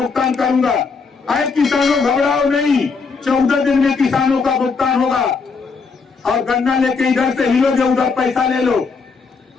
करूंगा। अरे किसानों घबराओ नहीं, 14 दिन में किसानों का भुगतान होगा। और गन्ना लेके इधर से हिलोगे, उधर पैसा ले लो।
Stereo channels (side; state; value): right; quieter; 4.9 dB